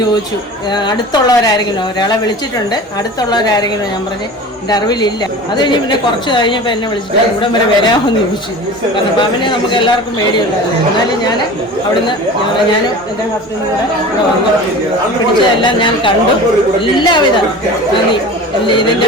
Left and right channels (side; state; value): both; normal; correlation 0.36